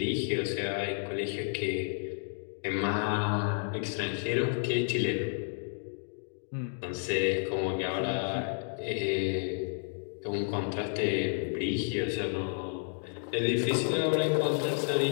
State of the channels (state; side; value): silent; right; digital silence